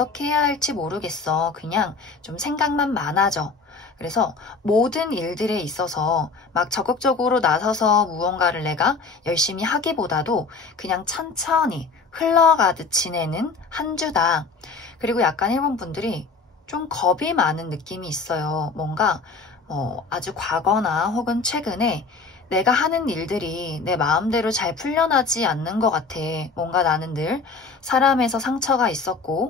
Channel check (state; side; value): quieter; right; 4.4 dB